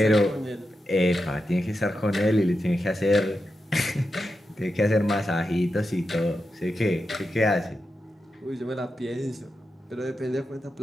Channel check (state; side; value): normal; both; correlation 0.89